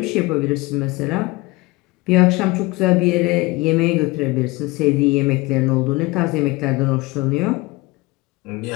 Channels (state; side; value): quieter; right; 22.3 dB